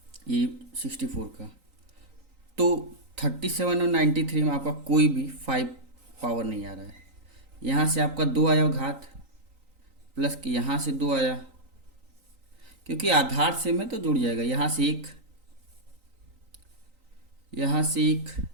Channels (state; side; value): late; left; 3.9 ms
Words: ये 64 का। तो 37 और 93 में आपका कोई भी 5 पावर नहीं आ रहा है। यहाँ से आपका 2 आया घात, प्लस कि यहाँ से 2 आया, क्योंकि आधार से में तो जुड़ जाएगा। यहाँ से 1, यहाँ से 1,